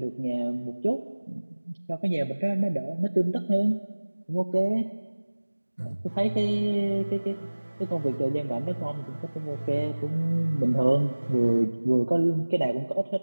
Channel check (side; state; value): both; inverted; correlation -1.00